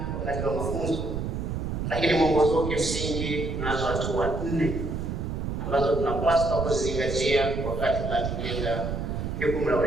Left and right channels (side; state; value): right; noise; rumble, 3 dB below the sound